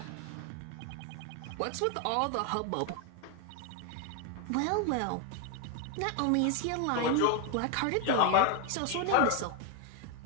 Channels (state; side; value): different; both; correlation 0.01